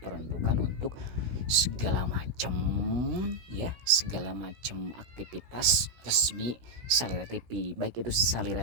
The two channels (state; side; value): late; left; 16 ms